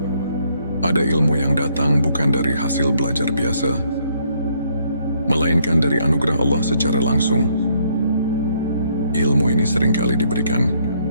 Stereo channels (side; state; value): both; inverted; correlation -0.69